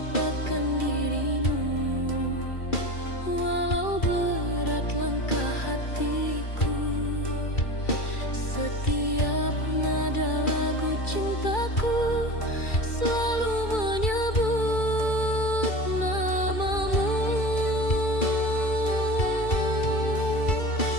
dirimu, walau berat langkah hatiku. Setiap nada lagu cintaku selalu menyebut namamu.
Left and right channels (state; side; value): late; right; 2.3 ms